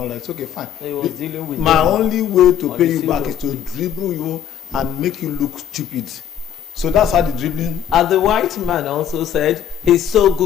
that, it's okay, fine. He was dealing with my only way to pay you back is to dribble you and make you look stupid. So that's how the dribbling. And the white man also said he's so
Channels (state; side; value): quieter; right; 9.6 dB